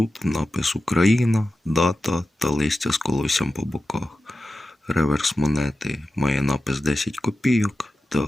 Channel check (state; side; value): normal; both; correlation 0.92